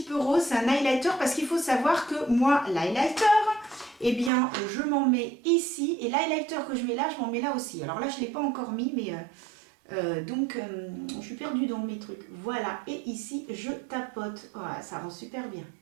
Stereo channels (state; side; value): drops out; left; at 4.3 s